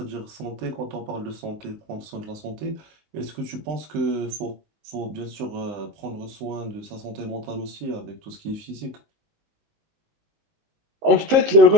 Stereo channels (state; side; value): late; left; 19 ms